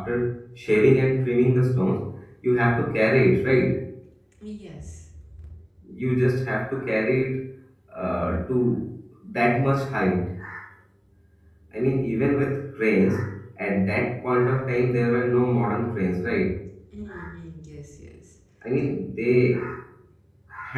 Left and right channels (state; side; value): identical; both; correlation 1.00